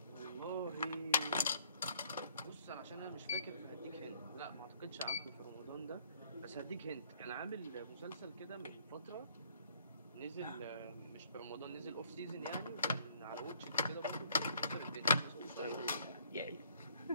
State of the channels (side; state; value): both; inverted; correlation -0.61